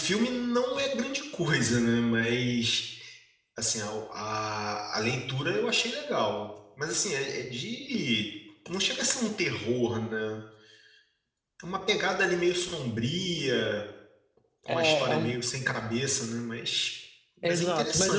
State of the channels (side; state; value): both; identical; correlation 1.00